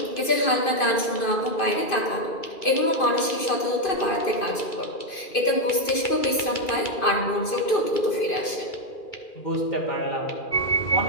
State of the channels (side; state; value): right; late; 2.5 ms